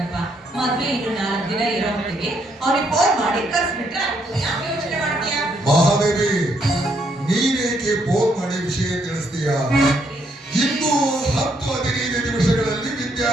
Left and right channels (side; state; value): both; normal; correlation 0.73